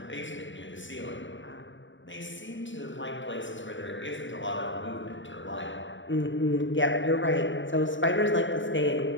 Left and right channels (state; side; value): late; right; 0.55 ms